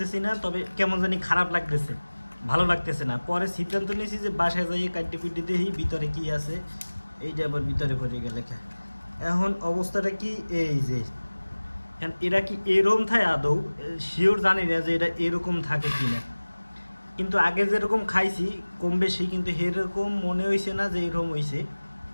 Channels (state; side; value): inverted; both; correlation -1.00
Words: না, তবে কেমন জানি খারাপ লাগতেছে, ভালো লাগতেছে না। পরে সিদ্ধান্ত নিয়েছি যে বাসায় যাইয়ে কাটি কুটি দেখি ভিতরে কি আছে, এইটা আবার ভিতরে পড়ে গেলে এখন অবস্থাটা কি এই যে এখন এরা কি এরকম থাকে আদৌ শিওর জানি না যে এটা এরকম থাকে কি না, কিন্তু আগে যেরকম খাইছি কম বেশি, কিন্তু এরকম মনে হয়েছে না যে এরকম হয়েছে।